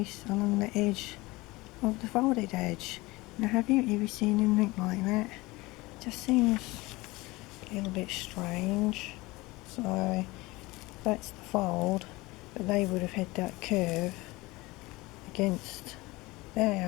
along the edge of the folded edge. Now, have you ever seen anything like that? Just seems a little bit strange. So that's the fold, but they would have had that curve against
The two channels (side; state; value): right; quieter; 21.8 dB